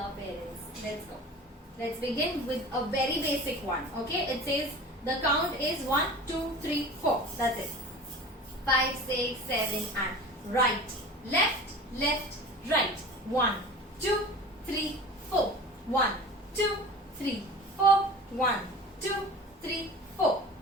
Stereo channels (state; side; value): normal; both; correlation 0.38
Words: parents. Let's go. Let's begin with a very basic one. Okay, it says the count is 1, 2, 3, 4. That's it. 5, 6, 7 and right, left, left, right. 1, 2, 3, 4. 1, 2, 3, 4. 1, 2, 3, 4.